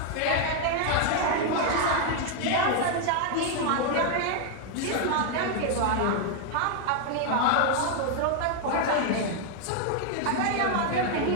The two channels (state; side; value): different; both; correlation 0.00